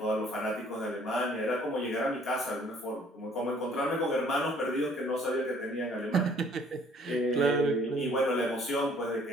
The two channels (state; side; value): normal; both; correlation 0.58